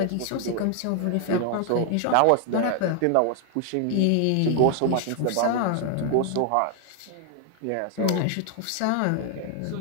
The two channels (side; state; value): both; different; correlation 0.00